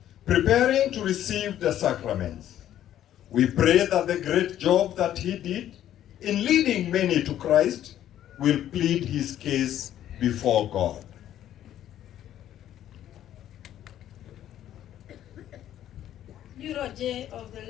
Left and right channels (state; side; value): quieter; right; 11.7 dB